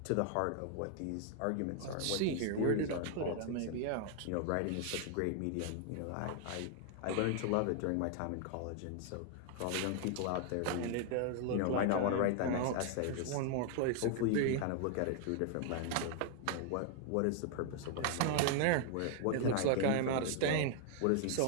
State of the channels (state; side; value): different; both; correlation 0.00